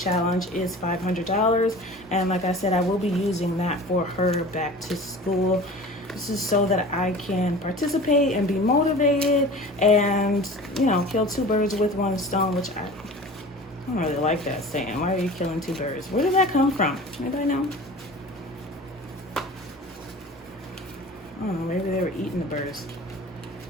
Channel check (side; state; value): both; normal; correlation 0.39